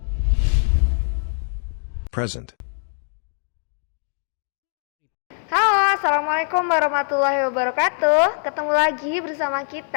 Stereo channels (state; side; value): silent; right; digital silence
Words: Present. Halo, assalamualaikum warahmatullahi wabarakatuh. Ketemu lagi bersama